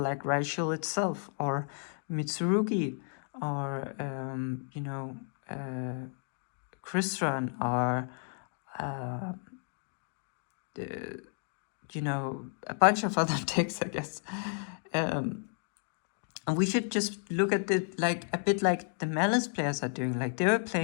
like Raichel itself, or Mitsurugi, or Crystron, or a bunch of other decks, I guess. And we should just look at it like a bit like the Malice players are doing. Like, they were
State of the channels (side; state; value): right; silent; 56 dB below the other